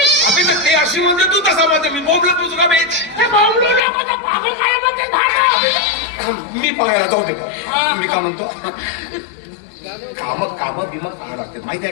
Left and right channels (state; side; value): drops out; right; at 3.8 s